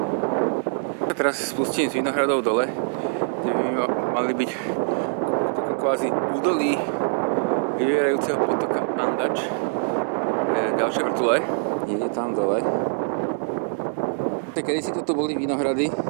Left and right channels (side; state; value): left; silent; digital silence